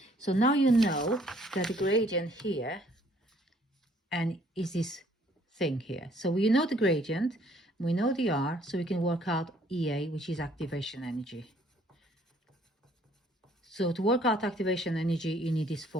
so now you know that the gradient here and is this thing here. So we know the gradient, we know the R, so we can work out EA, which is activation energy. So to work out activation energy, you need this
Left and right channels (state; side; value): normal; both; correlation 0.62